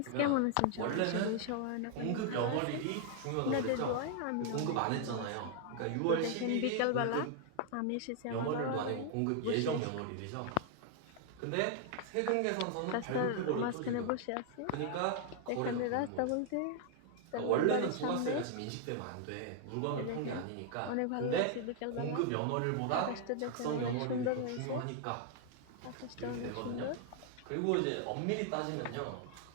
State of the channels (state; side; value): different; both; correlation 0.00